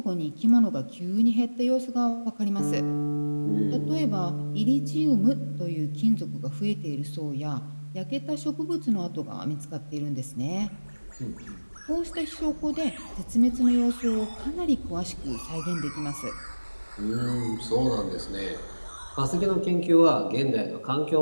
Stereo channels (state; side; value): inverted; both; correlation -1.00